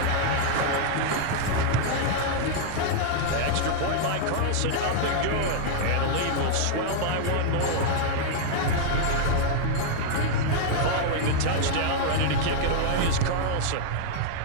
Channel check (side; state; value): both; different; correlation -0.01